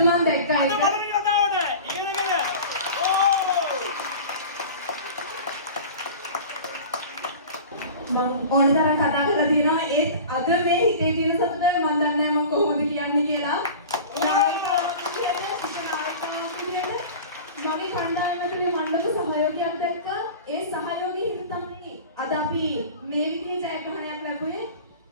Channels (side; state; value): both; inverted; correlation -0.37